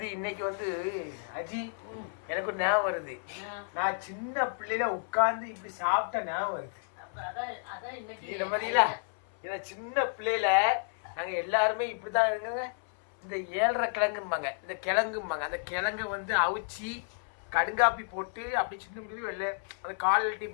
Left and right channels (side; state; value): right; silent; 57 dB below the other